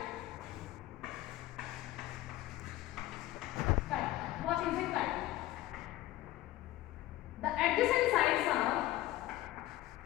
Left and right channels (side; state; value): right; quieter; 15.7 dB